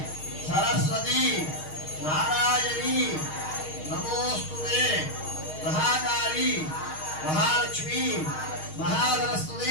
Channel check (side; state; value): right; late; 6.4 ms